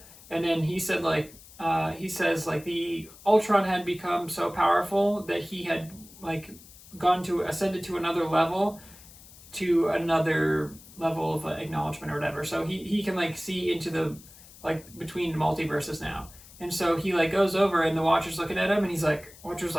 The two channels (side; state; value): left; noise; hiss, 21 dB below the sound